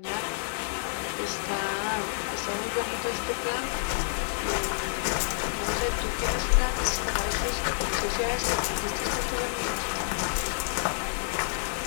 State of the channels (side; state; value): right; silent; digital silence